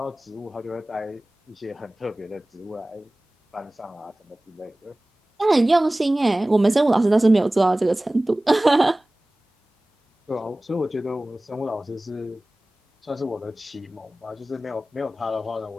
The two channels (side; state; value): both; normal; correlation 0.98